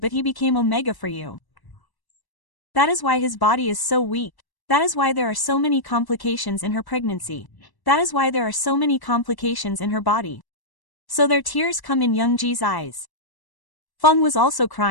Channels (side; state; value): right; late; 1.1 ms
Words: he became Omega for you. That is why his body is so weak. That is why there are so many complications in her pregnancy. That is why there are so many complications in her body. So their tears come in Youngji's eyes. Feng was also